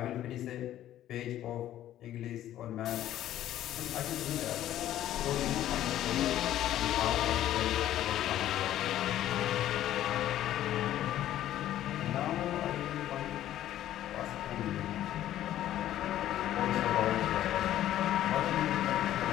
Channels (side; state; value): right; quieter; 12.6 dB